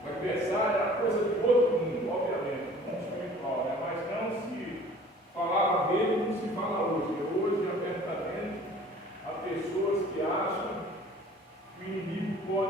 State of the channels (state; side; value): normal; both; correlation 0.49